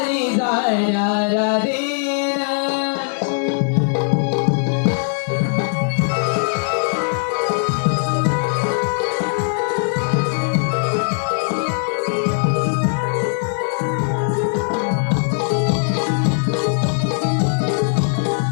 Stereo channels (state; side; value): silent; right; digital silence